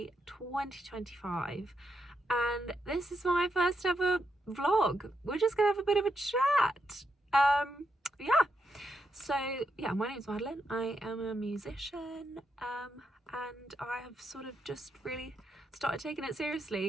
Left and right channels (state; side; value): normal; both; correlation 0.82